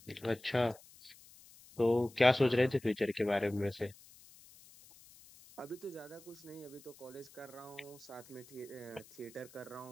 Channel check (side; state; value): left; noise; hiss, 22 dB below the sound